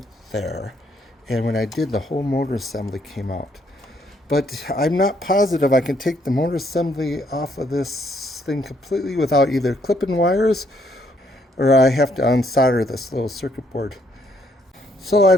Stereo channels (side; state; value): both; normal; correlation 0.70